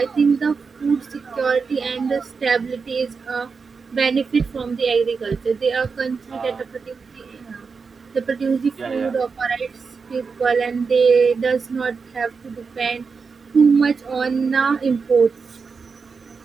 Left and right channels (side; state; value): left; quieter; 5.1 dB